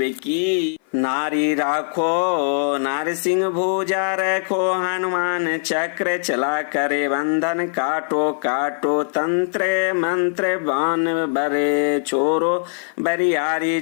की नारी राखो नारसिंह भुजा रखो हनुमान चक्र चला करे बंधन काटो काटो तंत्र मंत्र बाण बरे छोरो बरियारी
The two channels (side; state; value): right; silent; 57 dB below the other